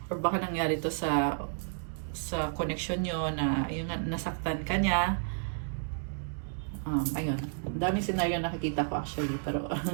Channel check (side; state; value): left; silent; digital silence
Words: or baka nangyari to sa connection nyo na yung nasaktan ka niya. Ayun, daming scenario nakikita ko actually, pero